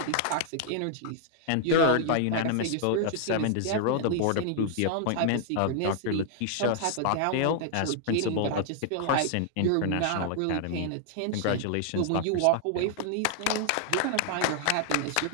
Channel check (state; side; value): different; both; correlation -0.01